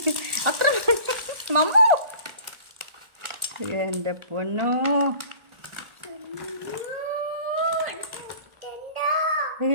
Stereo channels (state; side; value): late; left; 1.4 ms